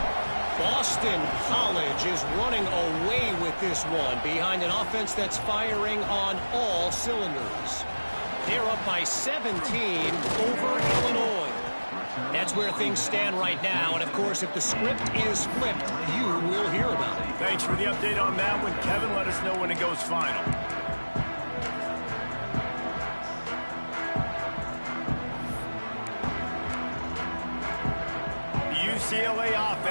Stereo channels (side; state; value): both; inverted; correlation -1.00